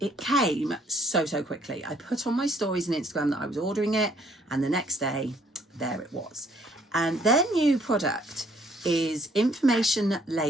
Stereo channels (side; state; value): both; normal; correlation 0.64